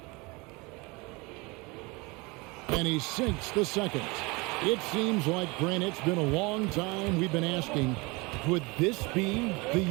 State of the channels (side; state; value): left; quieter; 26.0 dB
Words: And he sinks the second. It seems like, Grant, it's been a long time we've been asking, could this be